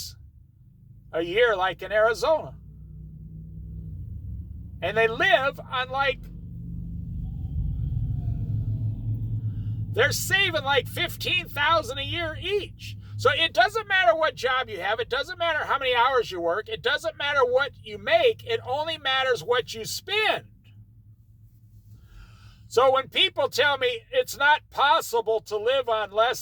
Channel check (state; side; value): identical; both; correlation 1.00